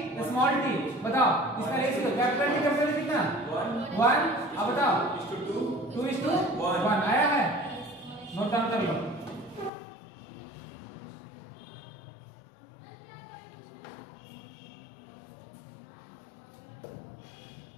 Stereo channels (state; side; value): drops out; right; at 9.7 s